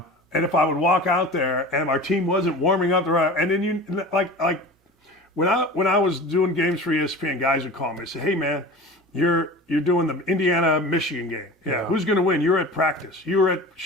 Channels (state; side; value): normal; both; correlation 0.36